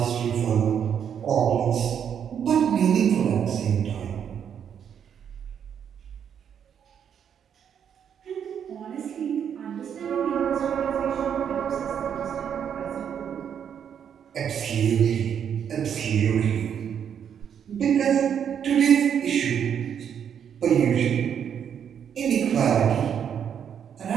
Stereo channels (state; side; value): quieter; left; 8.3 dB